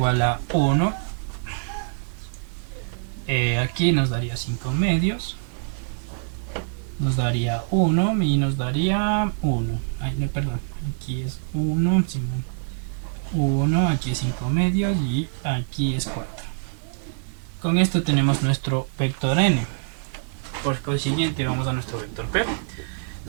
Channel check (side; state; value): left; silent; digital silence